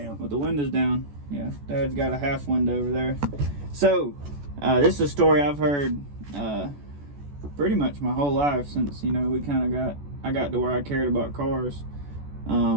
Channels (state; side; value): late; left; 14 ms